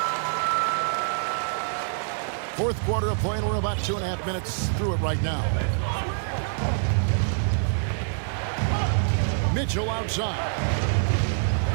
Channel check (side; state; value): left; silent; digital silence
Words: 4th quarter of play, and we're about 2.5 minutes through it right now. Mitchell outside.